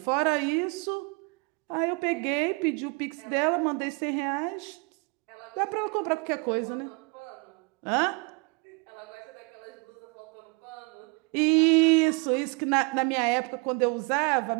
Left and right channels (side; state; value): left; quieter; 31.5 dB